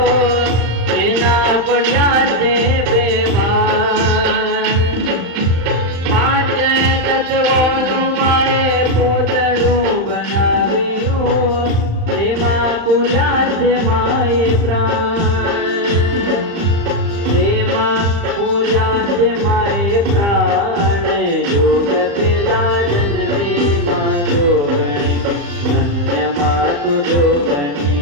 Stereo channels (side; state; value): left; late; 35 ms